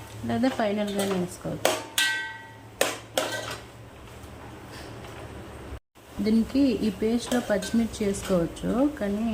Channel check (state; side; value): identical; both; correlation 1.00